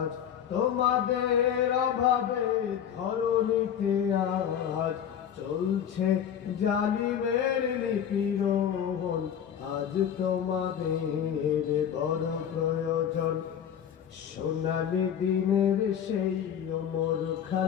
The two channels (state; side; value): quieter; right; 9.0 dB